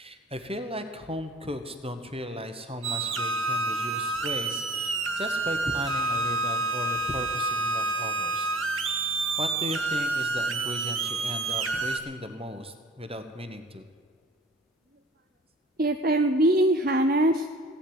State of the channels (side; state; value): both; normal; correlation 0.46